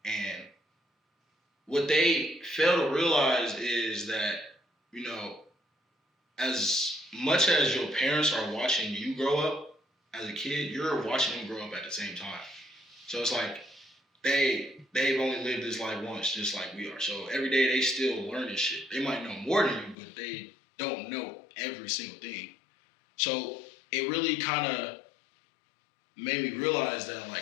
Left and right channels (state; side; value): drops out; right; at 20.0 s